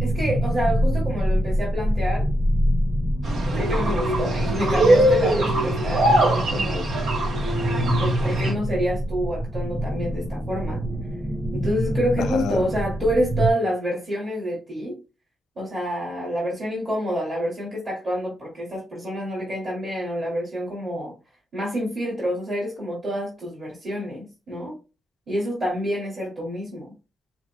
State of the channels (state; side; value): normal; both; correlation 0.81